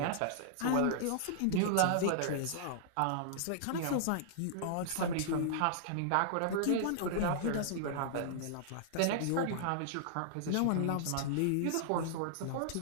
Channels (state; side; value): different; both; correlation -0.01